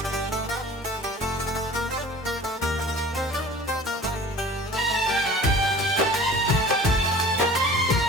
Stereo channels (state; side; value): normal; both; correlation 0.44